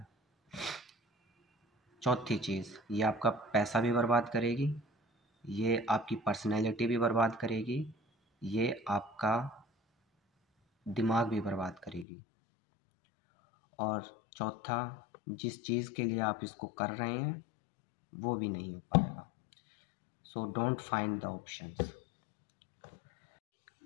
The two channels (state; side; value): drops out; right; at 12.1 s